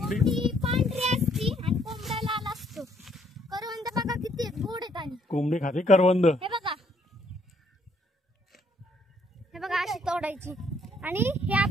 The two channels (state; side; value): normal; both; correlation 0.67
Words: पांढरी असती आणि कोंबडा लाल असतो. करवंद बघा किती गोड आहेत. आणि कोंबडी खाते करवंद. हे बघा, हे बघा अशी तोडायची आणि हे